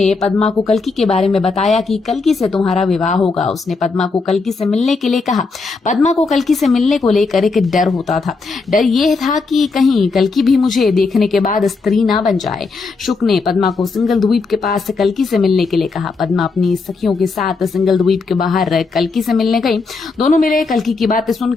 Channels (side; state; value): right; quieter; 4.2 dB